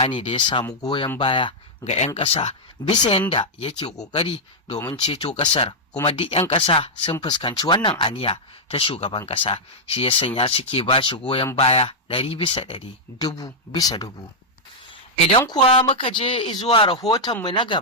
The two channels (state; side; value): normal; both; correlation -0.05